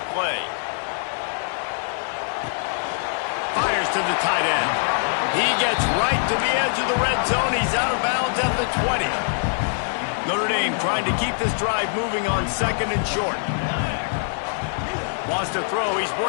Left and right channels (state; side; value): silent; right; digital silence